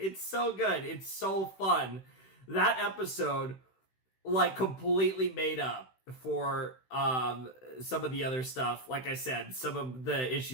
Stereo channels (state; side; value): late; right; 16 ms